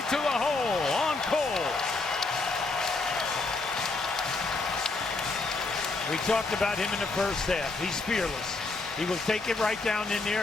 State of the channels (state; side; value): quieter; right; 3.5 dB